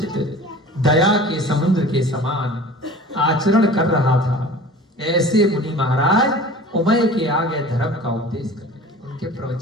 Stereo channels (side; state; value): both; normal; correlation 0.41